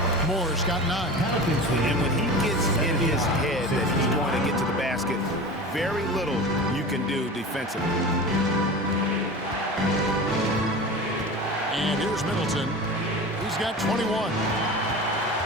Moore's got 9. And when he gets in his head that he's going to get to the basket, very little you can do defensively. And here's Middleton. He's got 21.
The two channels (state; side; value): normal; both; correlation 0.32